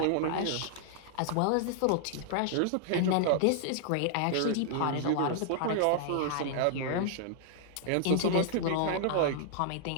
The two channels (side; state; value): both; different; correlation -0.01